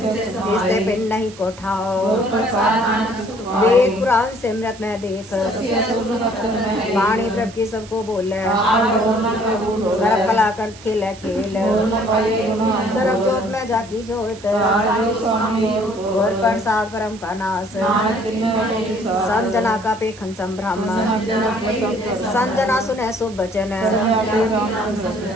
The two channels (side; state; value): right; noise; hiss, 20 dB below the sound